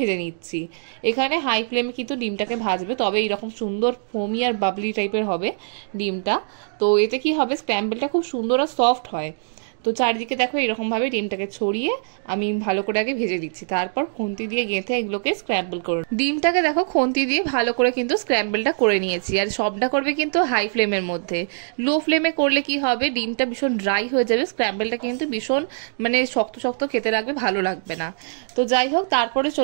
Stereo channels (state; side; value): silent; left; digital silence